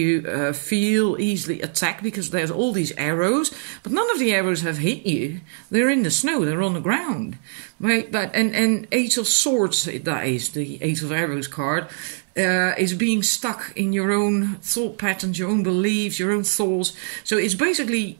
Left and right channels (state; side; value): silent; left; 63 dB below the other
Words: feel easily attacked because there's all these arrows, but none of the arrows have hit you. They're in the snow, they're on the ground, right? But and 8 of Swords, that is the 8 of Arrows card, is being stuck in your own thought patterns, your own beliefs, your own thoughts. So it's